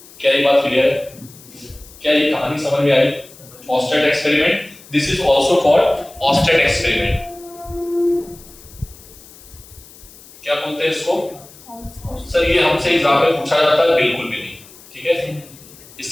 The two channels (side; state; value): left; noise; hiss, 22 dB below the sound